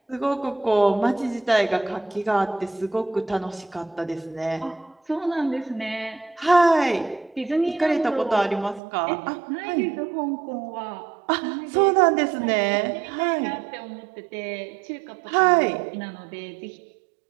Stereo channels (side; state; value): left; drops out; at 8.8 s